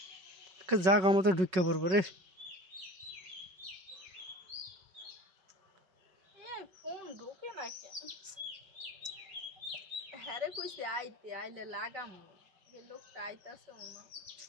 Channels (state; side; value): late; left; 5.3 ms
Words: জাগা মতো ঢুকে পড়বো রে। ফোন ঢোকে না কেন? হ্যারে কইছে আইতে, আইলে লাগাম। যে লোকটা আইতাছে না,